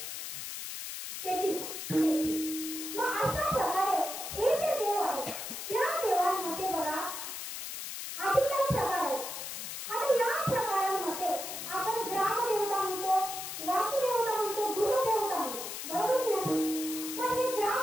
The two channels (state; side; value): noise; left; hiss, 7 dB below the sound